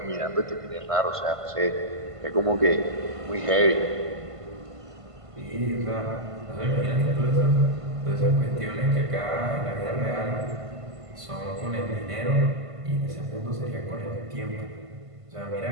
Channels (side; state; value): left; late; 1.5 ms